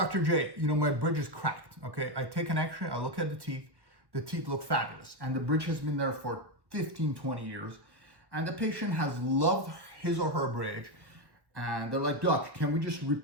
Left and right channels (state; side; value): late; left; 1.1 ms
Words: J, my bridge is cracked, okay? I take an x-ray, I look at the teeth look fabulous, and the bridge has been there for 15, 20 years, and the patient has loved his or her bridge, and they're like, Doc, can we just